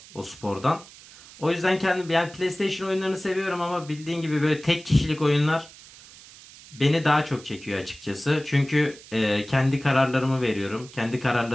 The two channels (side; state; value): right; noise; hiss, 20 dB below the sound